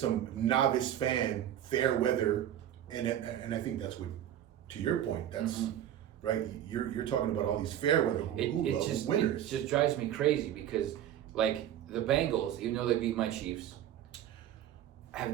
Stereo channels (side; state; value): left; quieter; 11.2 dB